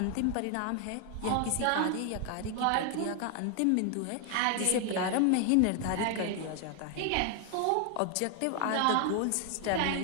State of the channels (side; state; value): both; different; correlation 0.00